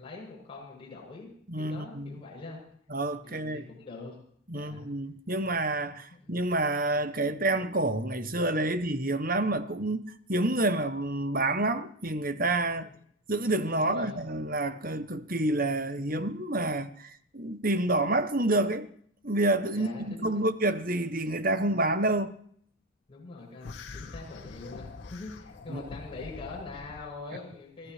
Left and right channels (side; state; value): both; normal; correlation 0.16